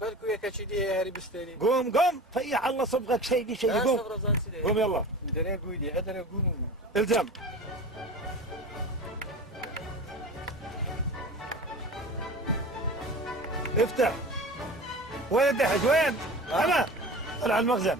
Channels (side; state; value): both; normal; correlation 0.35